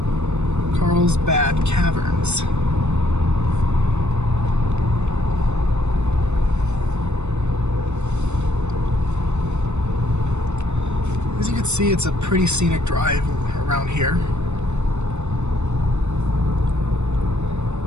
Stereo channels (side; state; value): left; late; 0.82 ms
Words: Carlsbad Caverns. As you can see, it's a pretty scenic drive around here.